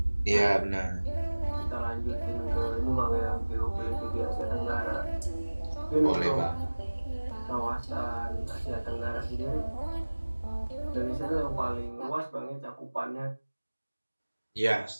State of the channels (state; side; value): inverted; both; correlation -1.00